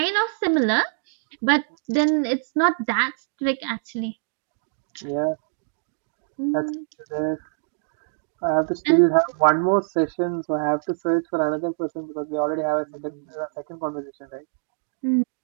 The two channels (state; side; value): silent; left; digital silence